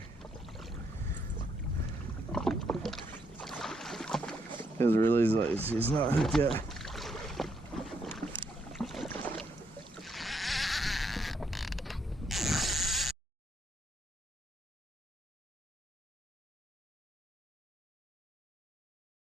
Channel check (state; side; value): normal; both; correlation 0.75